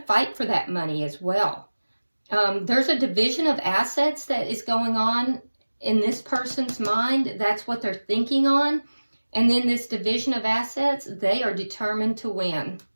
fight for that money as well. There's a division of assets that is going on in this person's mind. That's what they're thinking on. And then this division of assets, they are determined to win.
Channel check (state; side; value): inverted; both; correlation -1.00